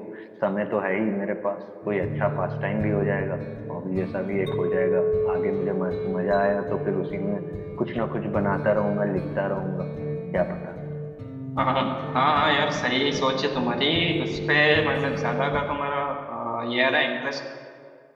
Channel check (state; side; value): identical; both; correlation 1.00